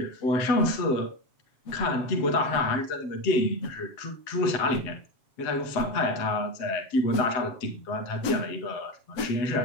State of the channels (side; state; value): right; late; 7.5 ms